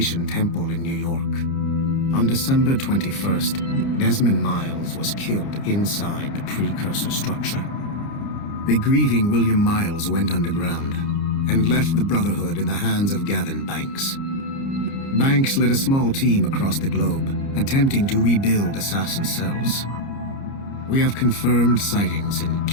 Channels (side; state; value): right; late; 30 ms